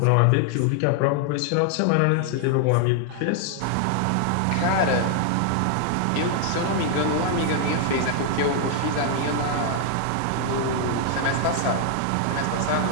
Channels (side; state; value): both; different; correlation 0.00